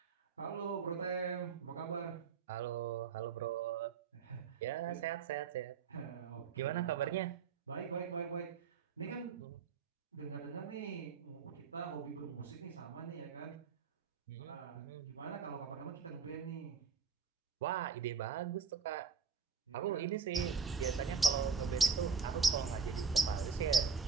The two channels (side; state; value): left; quieter; 5.9 dB